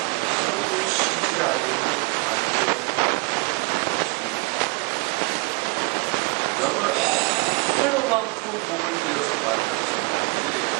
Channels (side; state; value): left; quieter; 31.0 dB